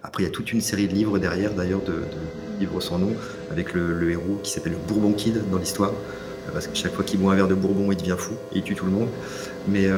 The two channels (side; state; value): both; identical; correlation 1.00